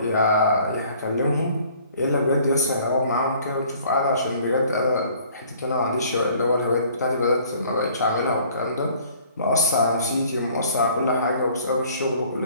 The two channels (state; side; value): inverted; both; correlation -0.55